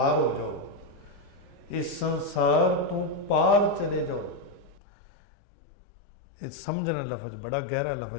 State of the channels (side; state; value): right; drops out; at 4.8 s